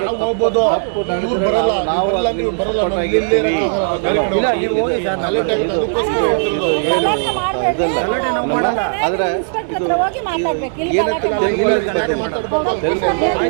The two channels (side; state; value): left; silent; digital silence